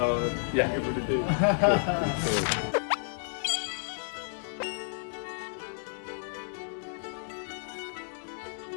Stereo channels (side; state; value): right; silent; digital silence